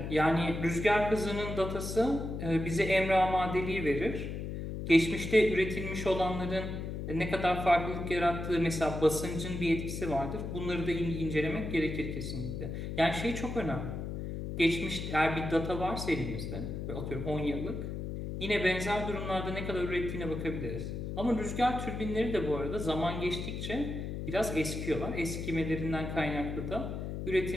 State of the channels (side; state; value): left; noise; hum, 5 dB below the sound